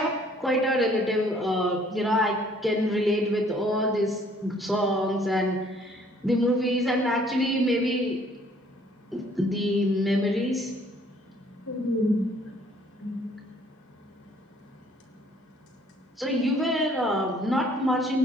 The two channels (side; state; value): both; normal; correlation 0.60